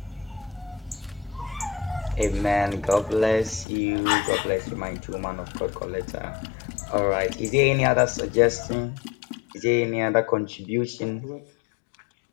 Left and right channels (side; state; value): right; drops out; at 3.7 s